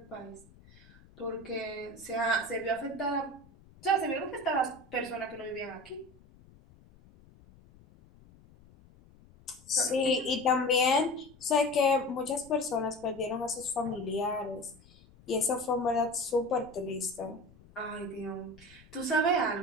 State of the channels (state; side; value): noise; left; rumble, 25 dB below the sound